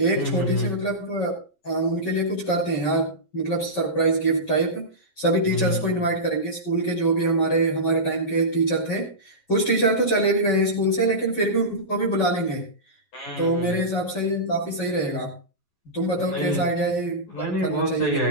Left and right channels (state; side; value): late; right; 11 ms